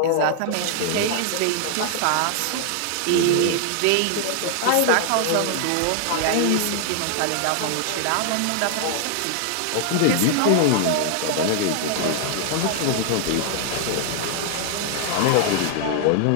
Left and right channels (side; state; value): both; different; correlation 0.00